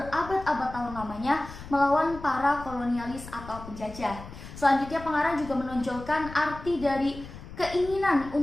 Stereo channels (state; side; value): noise; left; rumble, 14 dB below the sound